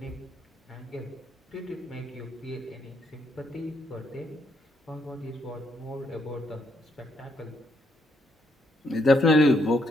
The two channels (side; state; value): both; normal; correlation 0.75